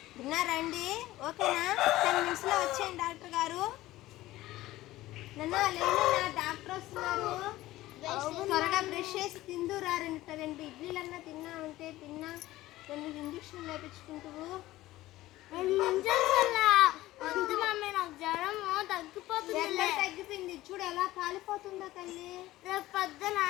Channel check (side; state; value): right; quieter; 16.6 dB